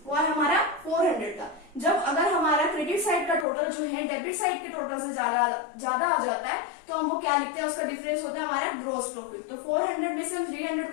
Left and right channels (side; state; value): right; drops out; at 3.5 s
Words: वो है हमारा 400 का। जब अगर हमारा क्रेडिट साइड का टोटल जो है डेबिट साइड के टोटल से ज्यादा आ जाता है तो हम वो क्या लिखते हैं, उसका डिफरेंस होता है हमारा ग्रॉस प्रॉफिट। तो 400 में से हम 300